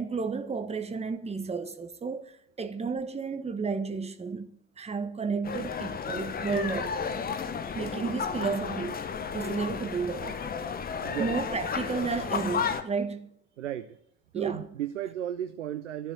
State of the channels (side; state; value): both; normal; correlation 0.34